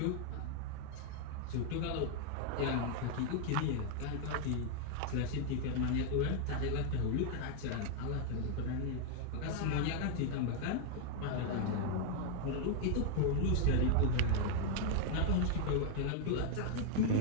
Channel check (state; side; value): different; both; correlation 0.00